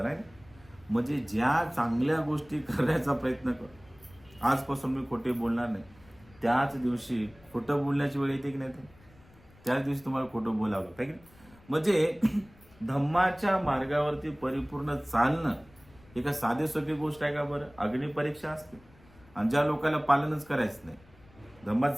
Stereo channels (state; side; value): noise; left; rumble, 26 dB below the sound